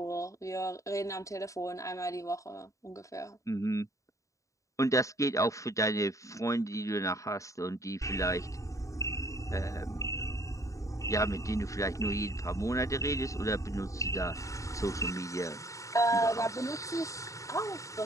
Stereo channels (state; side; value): late; right; 0.16 ms